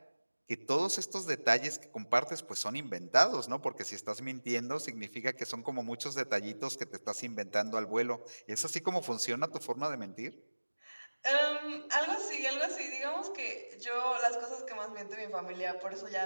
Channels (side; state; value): both; inverted; correlation -1.00